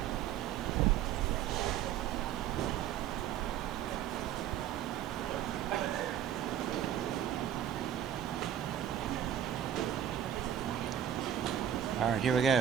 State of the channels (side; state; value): left; quieter; 10.1 dB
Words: All right, here we